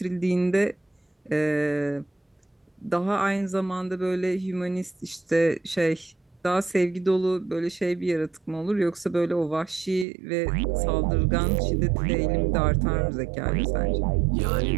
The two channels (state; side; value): drops out; left; at 10.1 s